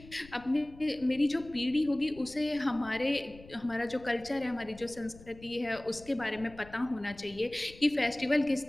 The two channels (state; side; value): noise; left; rumble, 20 dB below the sound